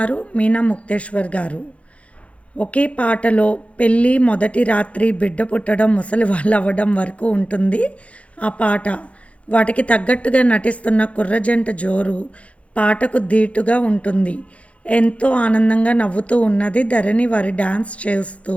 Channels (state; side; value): late; right; 0.063 ms